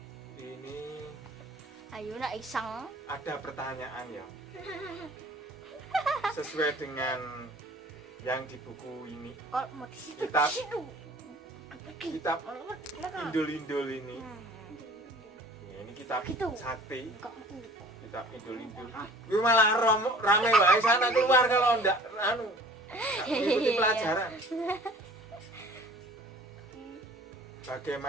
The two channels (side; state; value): both; normal; correlation 0.49